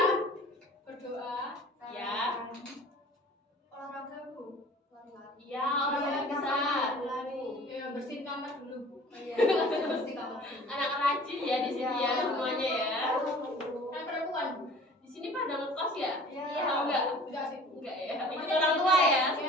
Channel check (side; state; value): both; normal; correlation 0.46